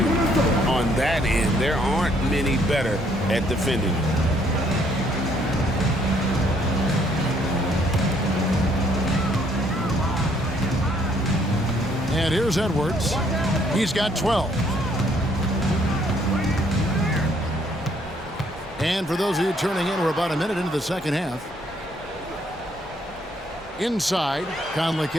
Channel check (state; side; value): normal; both; correlation 0.66